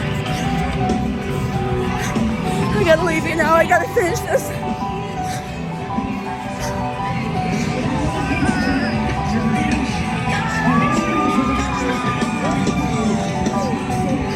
I gotta leave you now. I gotta finish this.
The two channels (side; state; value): both; identical; correlation 1.00